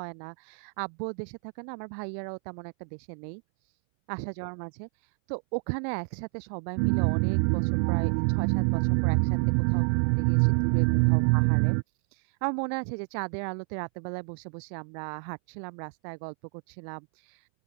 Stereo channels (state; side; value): silent; left; 59 dB below the other